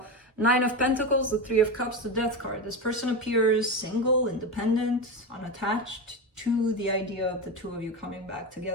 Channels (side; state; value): both; normal; correlation 0.18